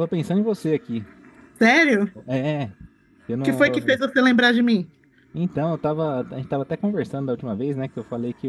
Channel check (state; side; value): identical; both; correlation 1.00